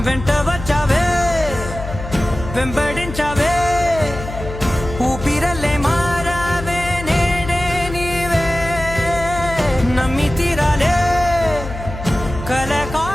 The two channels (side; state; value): left; noise; hum, 9 dB below the sound